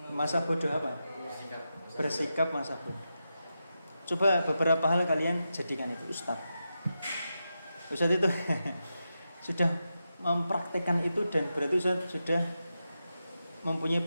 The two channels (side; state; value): both; inverted; correlation -0.89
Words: masa bodoh apa? Bersikap masa bodoh. Coba beberapa hal kalian jadikan itu Ustaz itu sudah mempraktekkan itu, dan berarti Ustaz sudah mempunyai